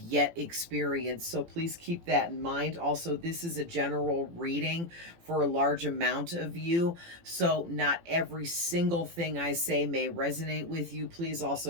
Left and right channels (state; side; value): late; left; 18 ms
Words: experienced. So please keep that in mind. Also, this is a general reading for a large amount of you. So not every single thing I say may resonate with you. Please